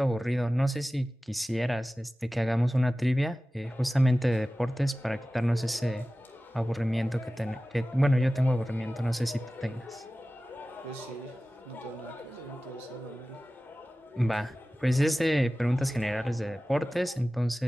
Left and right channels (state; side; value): normal; both; correlation 0.96